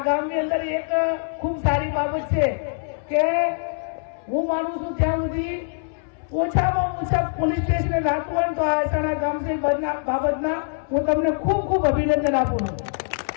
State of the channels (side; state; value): right; silent; 63 dB below the other